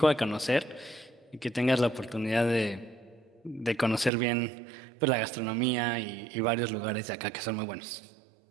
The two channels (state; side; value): drops out; left; at 4.1 s